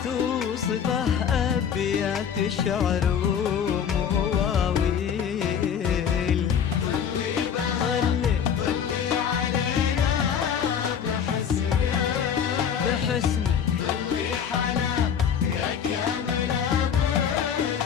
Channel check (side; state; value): right; quieter; 7.8 dB